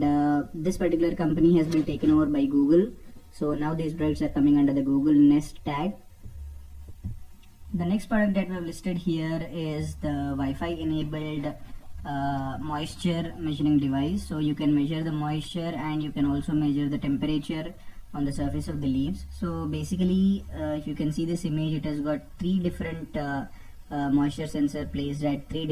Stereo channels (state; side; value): identical; both; correlation 1.00